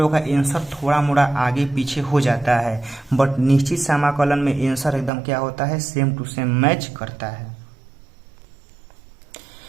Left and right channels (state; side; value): drops out; left; at 5.1 s